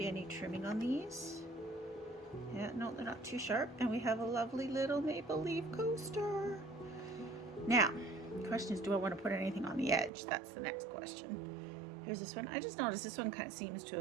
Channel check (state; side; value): drops out; left; at 10.1 s